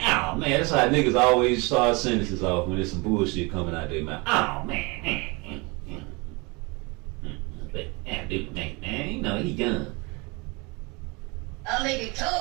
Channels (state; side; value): quieter; left; 27.7 dB